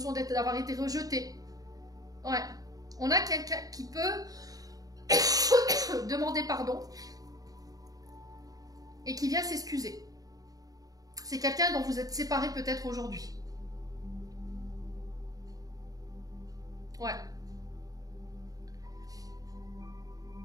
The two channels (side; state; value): left; late; 0.18 ms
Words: d'avoir été rejeté. Ouais. On a quelqu'un qui peut demander pardon et qui vient s'excuser. C'est quelqu'un dont vous êtes séparés peut-être aujourd'hui. Ouais.